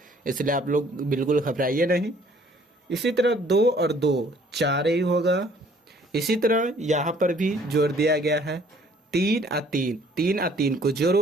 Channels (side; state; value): both; normal; correlation 0.59